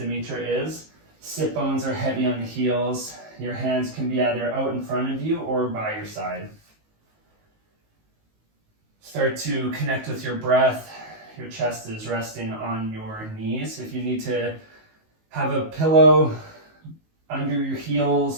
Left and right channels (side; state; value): left; late; 19 ms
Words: is. Sit bones are heavy on the heels. Your hands can be either out in front of you or by your side. Start to connect with your breath. Your chest is resting on your knees. If you need to have a pillow under your